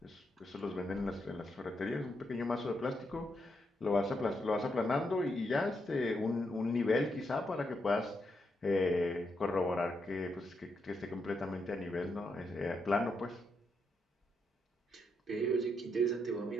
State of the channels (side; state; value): both; normal; correlation 0.81